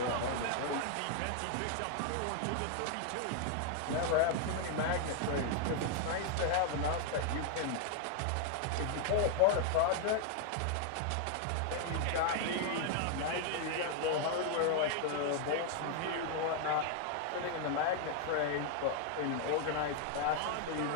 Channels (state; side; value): different; both; correlation 0.00